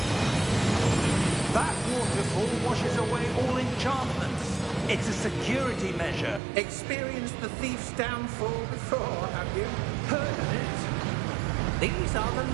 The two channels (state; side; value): drops out; left; at 6.4 s